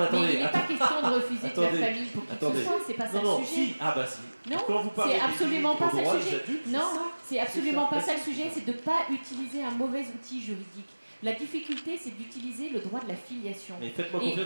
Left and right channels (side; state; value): both; inverted; correlation -1.00